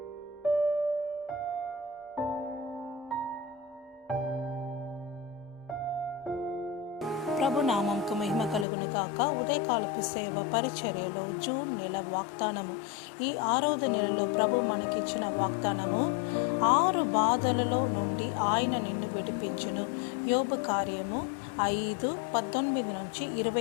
నామంకు మహిమ కలుగును గాక. ఉదయకాలపు సేవ పరిచర్యలో జూన్ నెల వాగ్దానము. ఈ 6వ నెలలో ప్రభు మనకిచ్చిన వాగ్దానము, 6 బాధలలో నుండి ఆయన నిన్ను విడిపించును. యోబు కార్యము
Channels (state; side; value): drops out; right; at 8.7 s